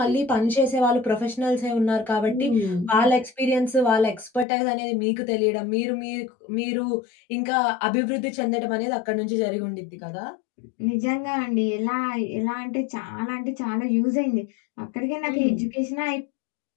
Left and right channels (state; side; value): drops out; right; at 4.5 s